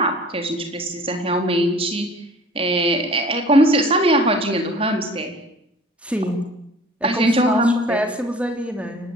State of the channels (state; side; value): normal; both; correlation 0.47